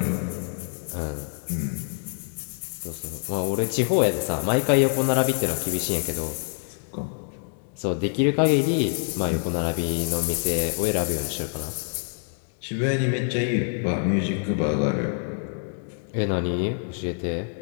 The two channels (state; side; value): silent; right; digital silence